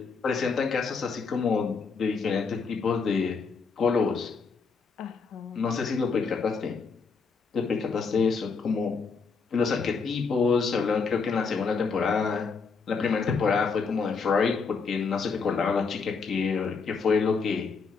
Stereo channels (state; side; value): quieter; right; 5.0 dB